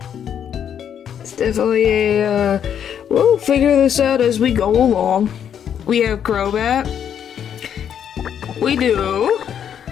it's definitely a, we'll figure this out as we go along. We have Crobat. We do.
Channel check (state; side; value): quieter; right; 8.8 dB